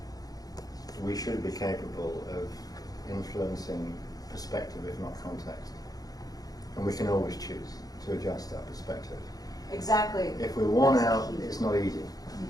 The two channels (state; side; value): late; right; 0.18 ms